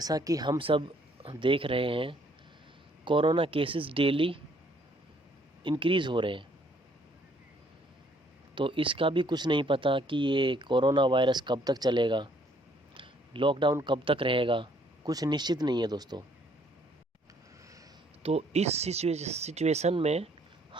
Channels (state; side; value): normal; both; correlation 0.64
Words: कि हम सब देख रहे हैं, कोरोना केसेस डेली इंक्रीज़ हो रहे हैं। तो इसका भी कुछ नहीं पता कि ये कोरोना वायरस कब तक चलेगा, लॉकडाउन कब तक रहेगा, कुछ निश्चित नहीं है दोस्तों। तो इस सिचुएशन में